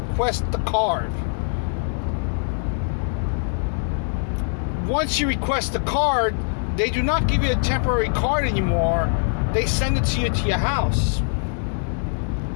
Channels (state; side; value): silent; right; 64 dB below the other